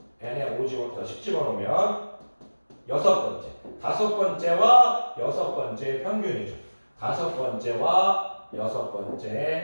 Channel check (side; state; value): both; inverted; correlation -1.00